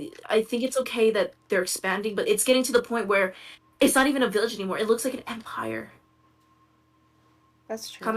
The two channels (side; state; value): both; identical; correlation 1.00